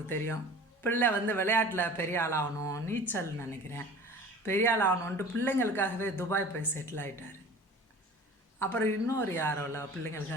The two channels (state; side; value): normal; both; correlation 0.42